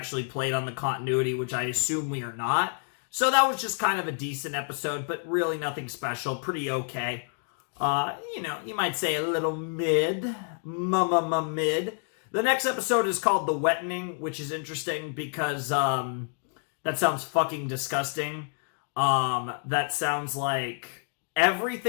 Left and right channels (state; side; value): silent; right; 59 dB below the other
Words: played on the continuity, which I assume we are not. So that was just kind of a decent episode, but really nothing special. Pretty okay. You might say a little mid. Mid. The next episode is called The Wettening, which is interesting because that sounds fucking disgusting. That sounds like...